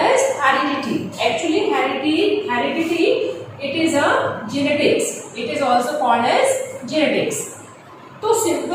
as heredity. Actually heredity it is a genetics. It is also called as genetics. तो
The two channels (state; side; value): identical; both; correlation 1.00